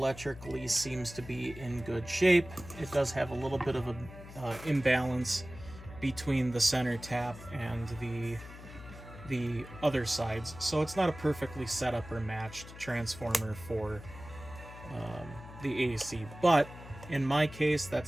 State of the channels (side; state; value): left; noise; hum, 15 dB below the sound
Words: seems to be in good shape. It does have a little bit of an imbalance between the center tap and the other sides, so it's not a perfectly set up or matched transformer for the AC. But in my case,